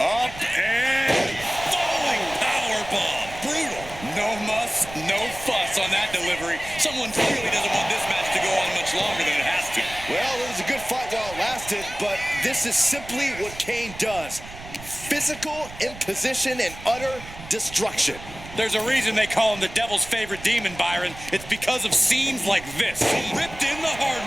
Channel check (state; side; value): noise; right; rumble, 15 dB below the sound